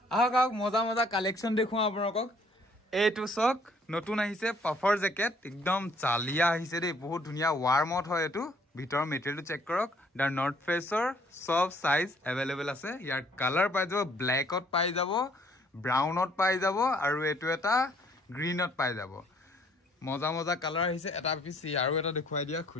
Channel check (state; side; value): normal; both; correlation 0.62